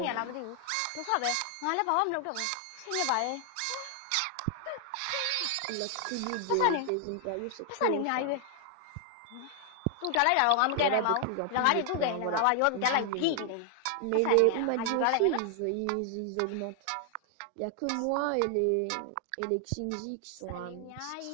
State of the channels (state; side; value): different; both; correlation 0.00